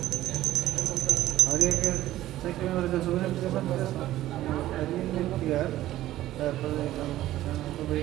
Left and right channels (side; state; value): left; quieter; 14.5 dB